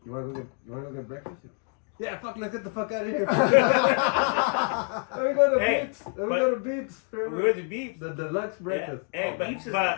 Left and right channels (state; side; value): quieter; right; 39.9 dB